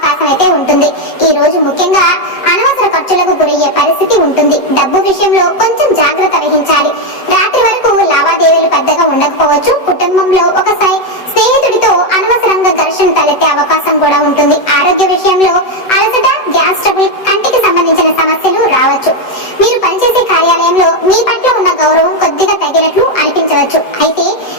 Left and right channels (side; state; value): right; late; 7.9 ms